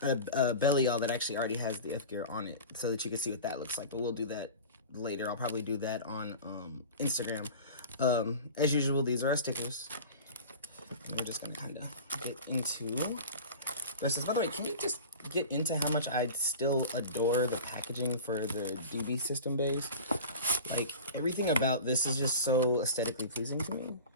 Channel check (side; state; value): both; inverted; correlation -0.35